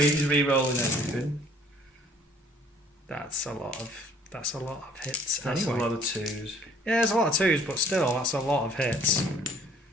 he's re-rolling everything. That's a lot of hits. That's anyway. a lot of 2s. Yeah, there's a lot of 2s, but still, that's a lot of hits.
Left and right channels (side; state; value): both; normal; correlation 0.57